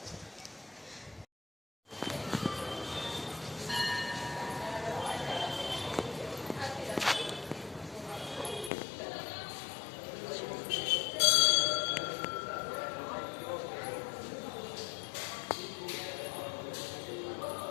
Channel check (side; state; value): right; drops out; at 8.7 s